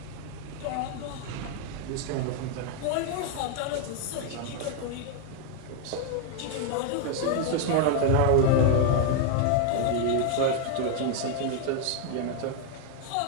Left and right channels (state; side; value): different; both; correlation 0.00